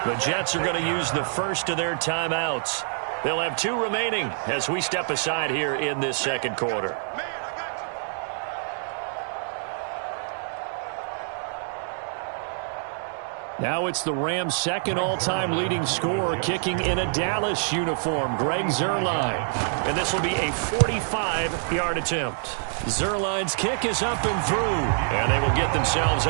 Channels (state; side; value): silent; left; digital silence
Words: The Jets are going to use the first of their timeouts. They'll have 2 remaining as we step aside here in this second quarter. Now it's the Rams' second all-time leading scorer, kicking in a Dallas uniform, Greg Zuerlein. And this will be a 45-yard attempt. Zuerlein's kick is up and through, and they will get themselves